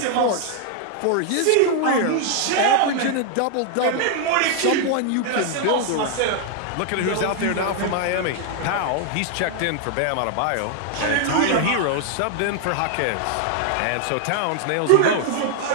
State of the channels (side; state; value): both; different; correlation 0.00